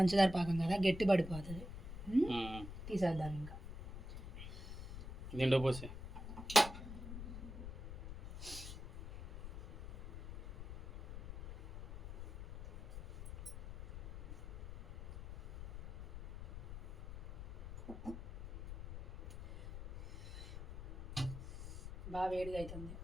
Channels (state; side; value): noise; left; rumble, 10 dB below the sound